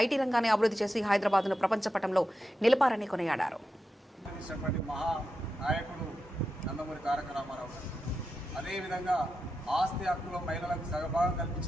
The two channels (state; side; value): normal; both; correlation 0.89